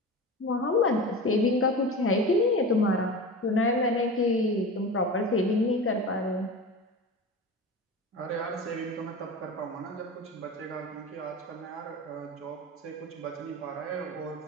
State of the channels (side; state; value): both; normal; correlation 0.30